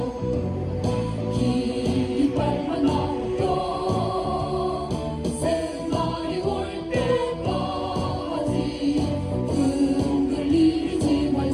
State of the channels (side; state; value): both; identical; correlation 1.00